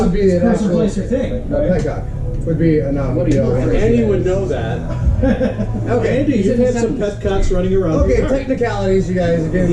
would be It's a an person, actual- place, or thing. Right? Peacock would be a noun. What do you prefer? Andy would know that. Okay. Andy, you've had some pet cocks running around. Okay, your car. technicalities, you guys. Again,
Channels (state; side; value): identical; both; correlation 1.00